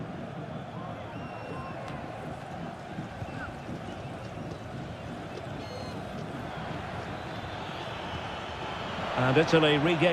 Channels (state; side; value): identical; both; correlation 1.00